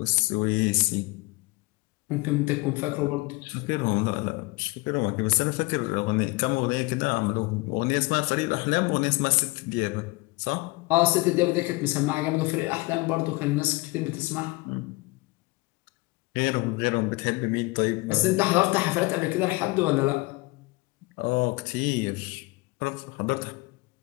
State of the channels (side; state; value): right; quieter; 23.9 dB